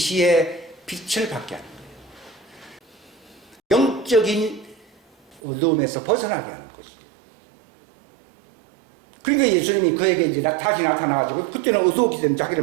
빛을 받게 하는 거예요. 영적인 어두움에서 벗어나게 하는 거죠. 그러니까 예수님이 그에게 이제 다시 나타나가지고, 그때는 어두웠기 때문에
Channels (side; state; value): left; drops out; at 5.4 s